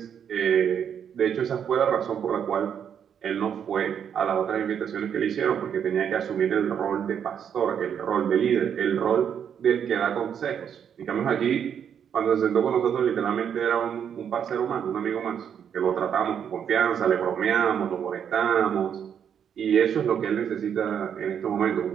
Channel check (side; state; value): left; quieter; 8.2 dB